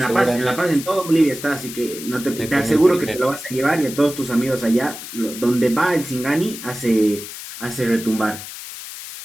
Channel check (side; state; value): left; noise; hiss, 11 dB below the sound